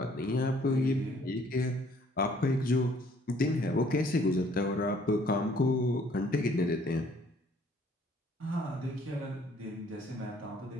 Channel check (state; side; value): normal; both; correlation 0.60